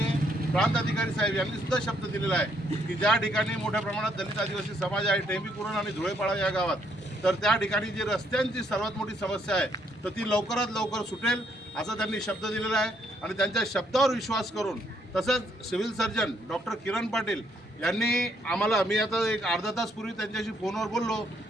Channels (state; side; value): normal; both; correlation 0.71